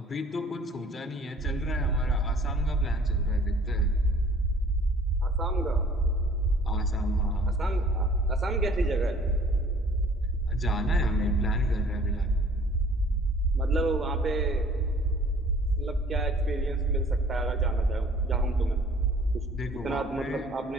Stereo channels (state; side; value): normal; both; correlation 0.53